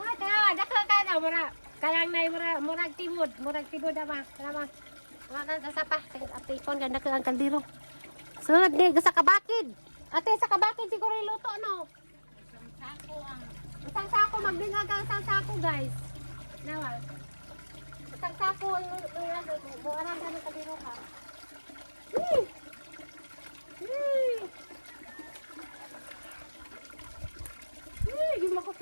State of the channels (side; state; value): both; inverted; correlation -1.00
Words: tanawa, dako ka na mura. Kalang na murag tibod ama. Salamat. Wala na sa pa. Apipon ganda ka ang kaldero. Sunod ni sa kabakid. Ate sa kabakid siguro iluto no. Isang sako magdinga ka isang sako guys. Nawal. Isang sako buwanan ka ng kaldero ka. Yung makos